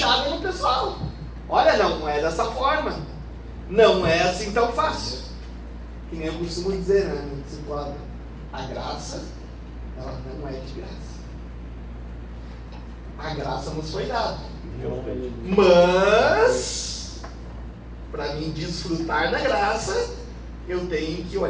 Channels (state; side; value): identical; both; correlation 1.00